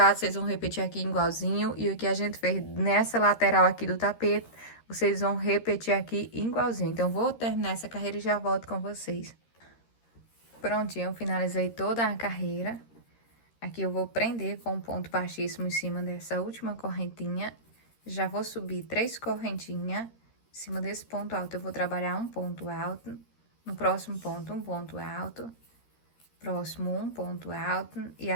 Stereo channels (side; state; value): right; late; 13 ms